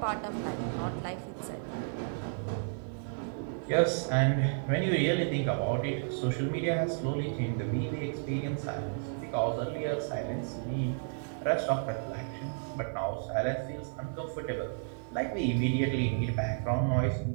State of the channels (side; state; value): left; silent; 56 dB below the other